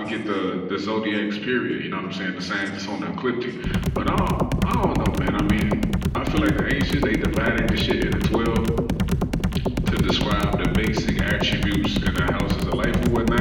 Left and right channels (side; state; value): both; identical; correlation 1.00